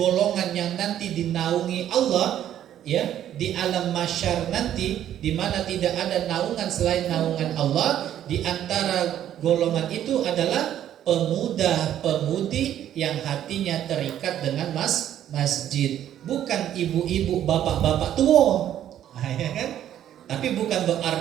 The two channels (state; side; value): quieter; left; 11.1 dB